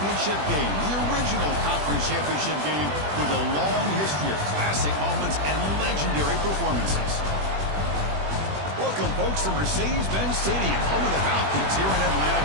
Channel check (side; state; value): left; late; 20 ms